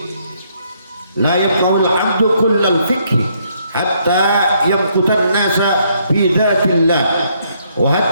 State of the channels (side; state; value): both; inverted; correlation -0.71